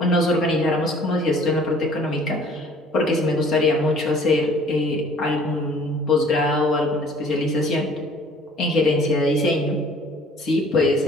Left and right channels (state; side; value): normal; both; correlation 0.54